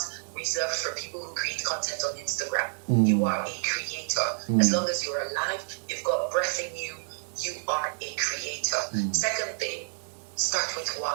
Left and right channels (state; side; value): silent; left; digital silence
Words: reserved for people who create content on Instagram. You are a creator. As long as you're alive, you've got breath in you, you are a creator. Second thing, start with